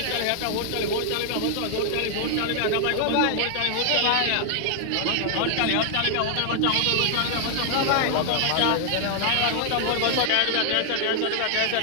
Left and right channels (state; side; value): different; both; correlation 0.00